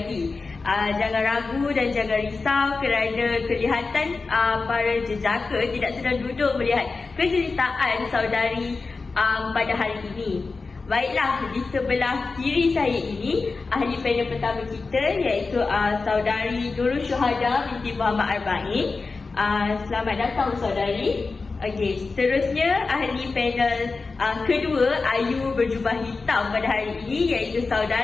Jangan ragu dan jangan risau kerana kelihatan para jejaka tidak sedang duduk melihat keceritaan saudari pada hari ini. Baiklah, di sebelah kiri saya ini ahli panel pertama kita iaitu saudari Nurul Syuhada binti Muhammad Arba'in. Selamat datang saudari. Okey, seterusnya ahli panel kedua Ayu berjubah hitam pada hari ini iaitu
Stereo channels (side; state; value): right; quieter; 4.1 dB